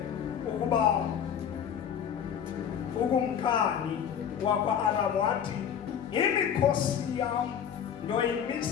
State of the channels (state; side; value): quieter; right; 8.4 dB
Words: ukuba ukumkani wakwa-Aram wathi, imikhosi yam